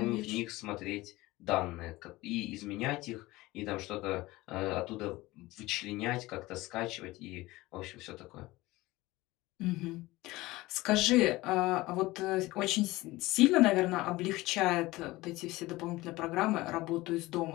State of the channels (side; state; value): right; quieter; 19.6 dB